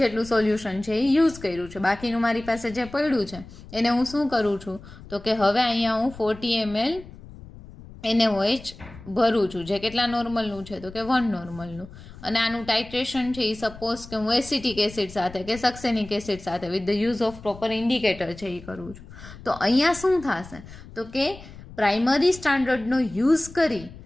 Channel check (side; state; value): left; noise; rumble, 17 dB below the sound